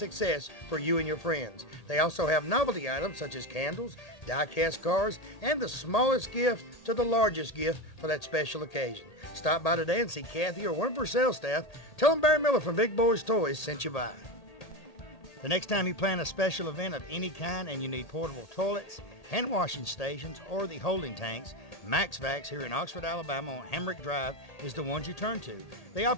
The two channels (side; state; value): right; late; 1.8 ms